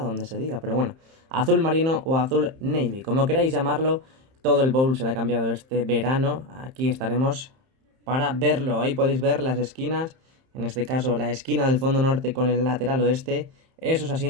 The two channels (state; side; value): late; left; 31 ms